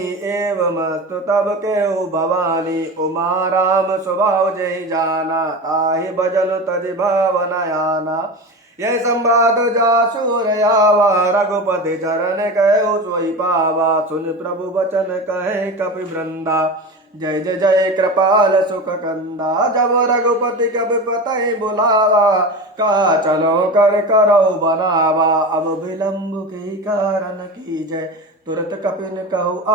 एवं अस्तु तब केहु भवानी। उमा राम स्वभाव जय जाना, ताहि भजन तज भावन आना। यह संवाद जासुर आवा, रघुपति चरण कहु सोई पावा। सुन प्रभु वचन कहे कपि वृंदा, जय जय जय कृपाल सुख कंदा। जब रघुपति कपि पतहि बुलावा, का चलो कर करो बनावा। अब विलंब के कारण की जय, तुरत कपिन कहु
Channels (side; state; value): both; normal; correlation 0.27